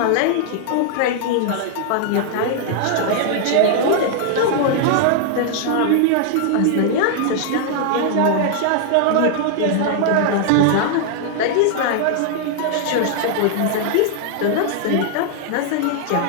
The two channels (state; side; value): different; both; correlation 0.00